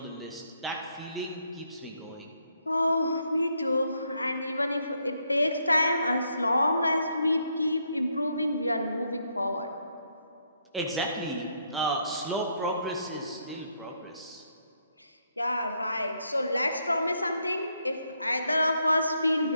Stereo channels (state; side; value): inverted; both; correlation -0.75